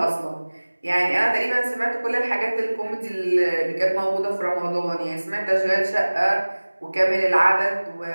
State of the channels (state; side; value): inverted; both; correlation -1.00